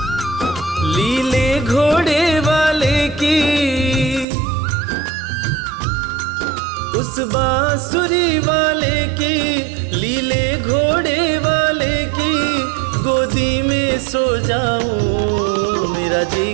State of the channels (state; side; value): drops out; left; at 4.2 s